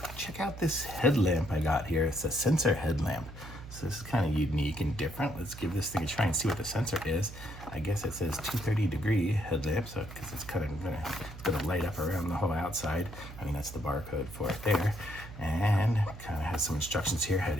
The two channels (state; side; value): noise; right; hum, 14 dB below the sound